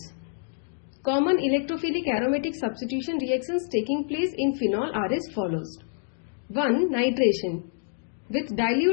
Common electrophilic aromatic substitution reactions taking place in phenol are as follows. 1. Nitration. With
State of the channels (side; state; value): right; silent; digital silence